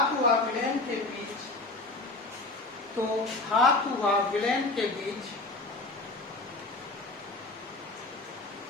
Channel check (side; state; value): right; quieter; 3.1 dB